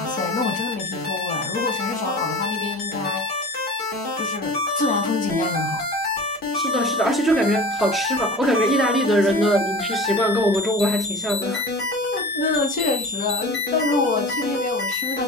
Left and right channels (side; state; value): both; normal; correlation 0.36